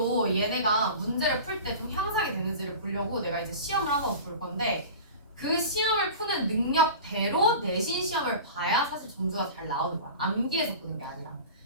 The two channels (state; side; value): inverted; both; correlation -0.35